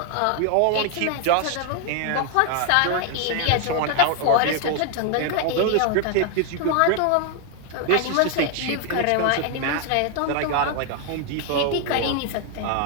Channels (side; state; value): both; different; correlation 0.00